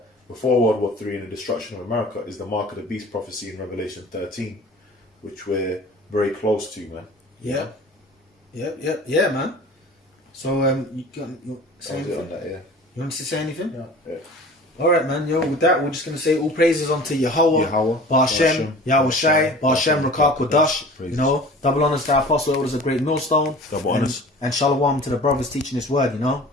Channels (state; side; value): normal; both; correlation 0.42